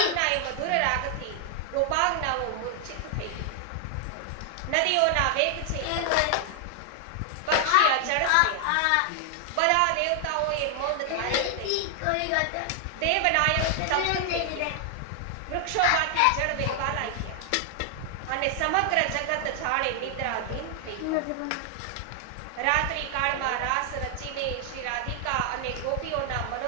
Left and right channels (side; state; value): both; different; correlation 0.00